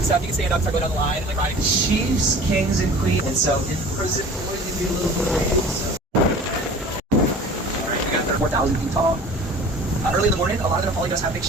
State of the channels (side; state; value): both; normal; correlation 0.43